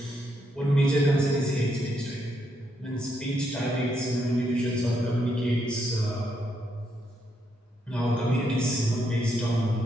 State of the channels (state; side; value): normal; both; correlation 0.78